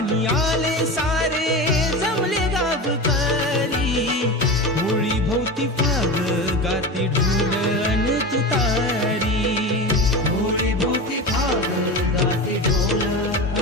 आले सारे जमले गावकरी, होळी भोवती फाग गाती ढोल अन तुतारी. होळी भोवती फाग गाते ढोल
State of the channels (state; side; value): normal; both; correlation 0.26